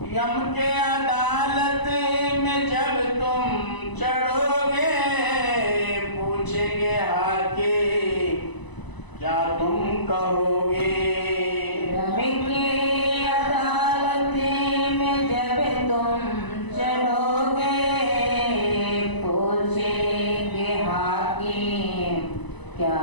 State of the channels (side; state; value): right; late; 1.0 ms